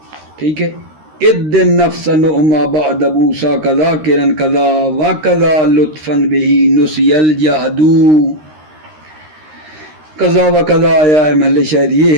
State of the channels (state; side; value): late; left; 13 ms